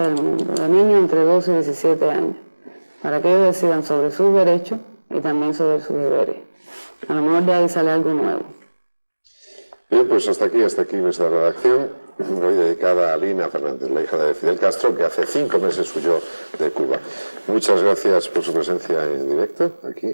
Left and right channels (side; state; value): both; inverted; correlation -1.00